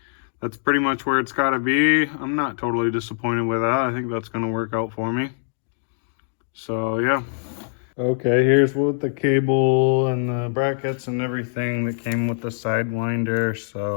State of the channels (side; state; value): right; silent; digital silence